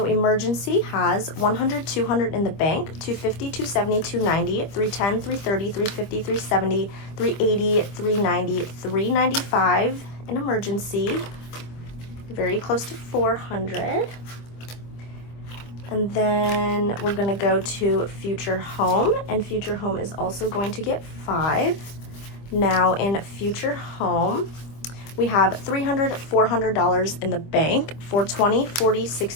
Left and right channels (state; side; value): late; right; 25 ms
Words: emergency has 100, 200 in the bank, 250, 270, 290, 310, 330, 350, 370, 380, 390, 395 in emergency. Very close to 400. And then we're gonna go to future home, and future home is also going to get 5. Now in future home, we have $300, $400 in the bank, 420, 40,